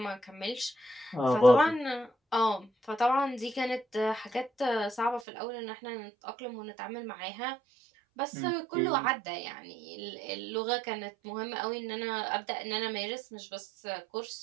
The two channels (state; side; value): drops out; left; at 5.2 s